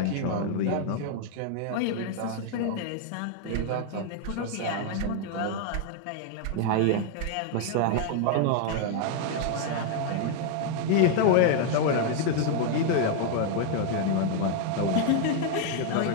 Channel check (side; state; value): both; different; correlation 0.00